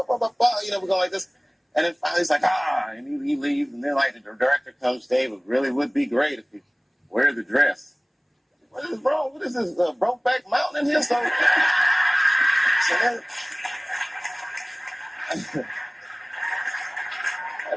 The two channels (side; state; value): both; identical; correlation 1.00